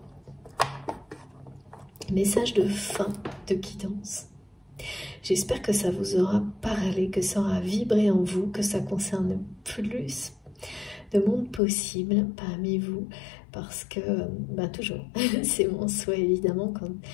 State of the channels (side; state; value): right; drops out; at 11.6 s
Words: message de fin de guidance. J'espère que ça vous aura parlé, que ça aura vibré en vous, que ça concerne plus de monde possible parmi vous, parce que, toujours, c'est mon souhait évidemment, quand